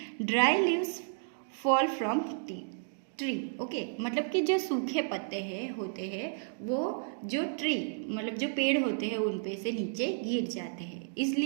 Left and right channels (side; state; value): left; silent; digital silence